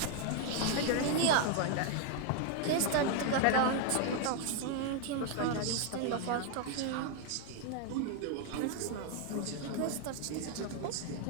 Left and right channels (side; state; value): both; different; correlation 0.00